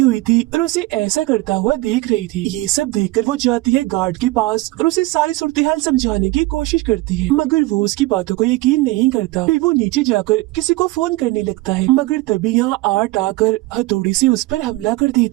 हुई थी और उसे ऐसा करता हुआ देख रही थी। ये सब देखकर वो जाती है गार्ड के पास और उसे सारी सूरत-ए-हाल समझाने की कोशिश करती है, मगर वो उसकी बातों को यकीन नहीं करता। फिर वो नीचे जाकर किसी को फोन करने लगता है, मगर तभी यहाँ आर्ट आकर हथौड़ी से उस पर हमला कर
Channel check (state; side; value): quieter; left; 19.8 dB